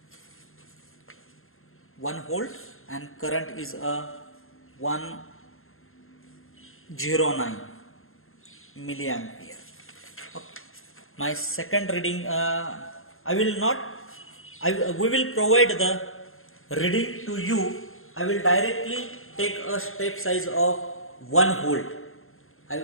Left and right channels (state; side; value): late; right; 0.61 ms